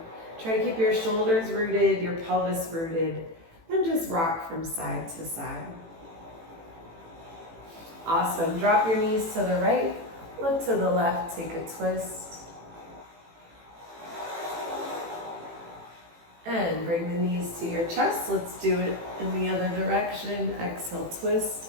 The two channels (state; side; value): late; left; 18 ms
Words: Try to keep your shoulders rooted, your pelvis rooted, and just rock from side to side. Awesome. Drop your knees to the right, look to the left, take a twist. And bring the knees to your chest. Let's do it in the other direction. Exhale, twist.